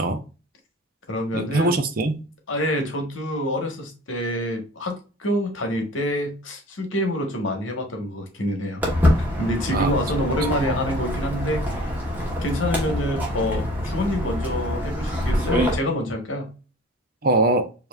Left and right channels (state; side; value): normal; both; correlation 0.45